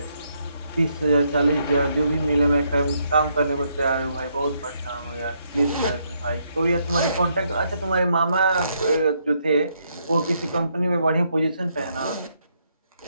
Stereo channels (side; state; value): both; inverted; correlation -0.75